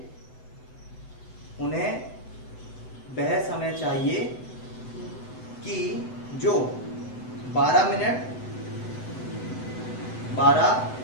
उन्हें वह समय चाहिए कि जो 12 मिनट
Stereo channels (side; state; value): right; late; 8.0 ms